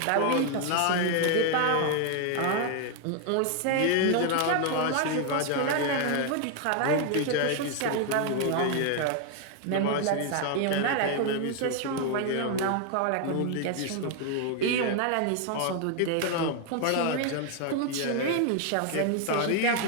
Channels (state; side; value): different; both; correlation 0.00